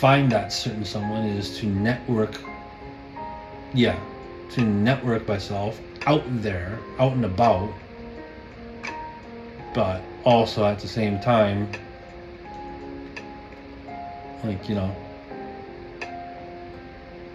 that certain someone is to network. Yeah, to network myself out there, out and about, but also at the same time, like,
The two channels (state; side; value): identical; both; correlation 1.00